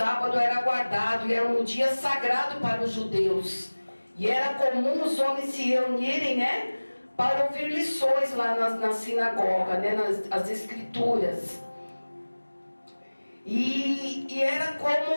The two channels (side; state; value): both; inverted; correlation -1.00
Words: era guardado, e era um dia sagrado para os judeus, e era comum os homens se reunirem, né, para ouvir lições lá na sinagoga, né, nas escrituras. E era